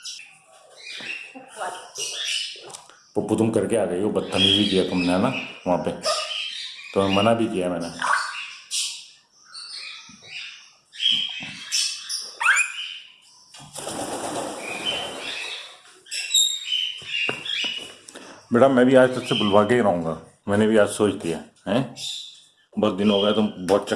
पप्पू तुम करके आ गई हो, बदतमीजी किया तुमने है ना वहाँ पे, तो मना भी किया मैंने। बेटा मैं भी आज तुझसे बुलवा के ही रहूँगा, मैंने भी आज सोच लिया है। बहुत दिन हो गए, तुम बहुत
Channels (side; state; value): both; identical; correlation 1.00